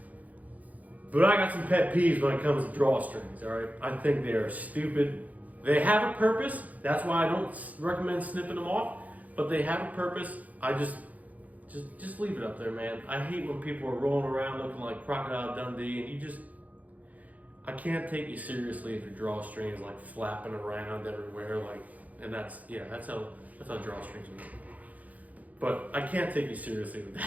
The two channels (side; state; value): left; late; 0.076 ms